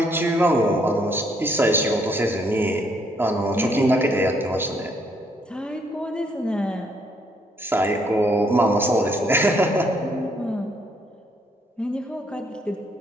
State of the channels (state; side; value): normal; both; correlation 0.69